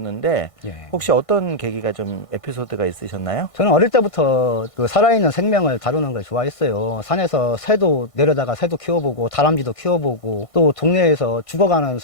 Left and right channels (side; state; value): right; late; 1.5 ms